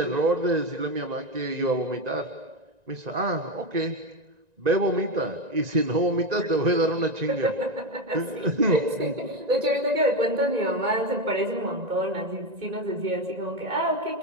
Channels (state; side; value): late; left; 1.9 ms